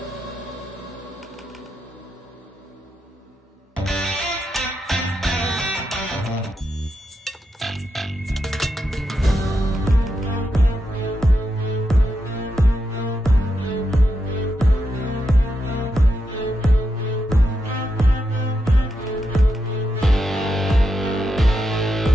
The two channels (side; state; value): both; normal; correlation 0.85